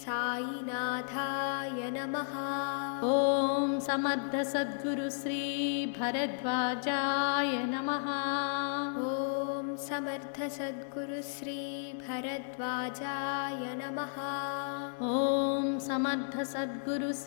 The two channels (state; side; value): silent; right; digital silence